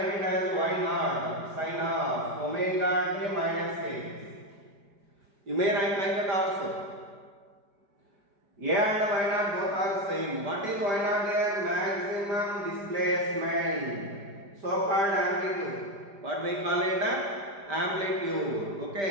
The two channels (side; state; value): left; late; 4.9 ms